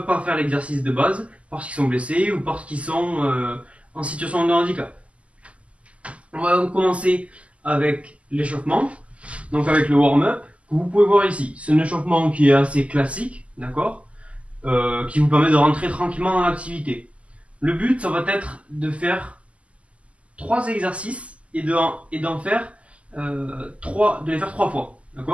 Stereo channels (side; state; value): left; late; 0.062 ms